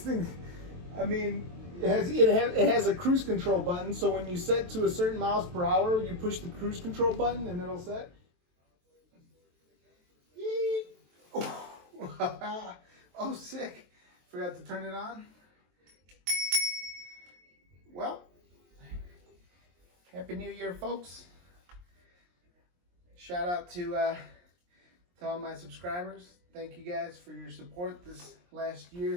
I mean, it has a cruise control button, so when you set to a certain miles per hour, you push the cruise control button and it'll set. Oh, sick. Forgot to turn it on. Well, Happy New Year, folks. Shout out to all my subscribers. Thank you guys for your support this last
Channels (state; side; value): late; left; 23 ms